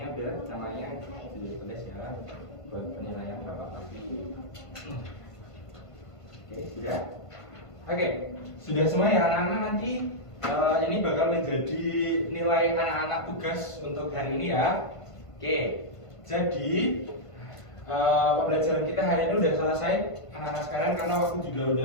udah, namanya di tulis ya buat penilaian Bapak nanti. Oke, sudah. Oke, sudah semua ya anak-anak. Nanti ini bakal menjadi nilai anak-anak tugas untuk hari ini ya. Oke, jadi pembelajaran kita hari ini udah selesai anak-anak sekalian karena waktu juga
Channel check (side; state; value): right; late; 1.5 ms